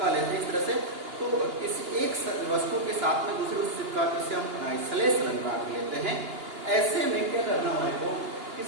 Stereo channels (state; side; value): late; left; 2.8 ms